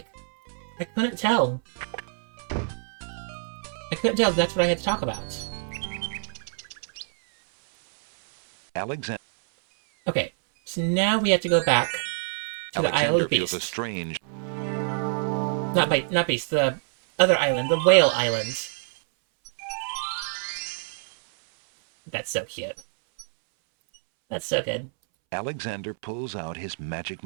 I couldn't tell. I couldn't tell if that's what I had to talk about. Alexander Okay, so now we have to go back to the Isle of feels a Beast. strange... Not Beast, the other island, the Whale Island. That's so cute. That's so good. Alexander pulls out his magic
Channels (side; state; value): left; silent; 61 dB below the other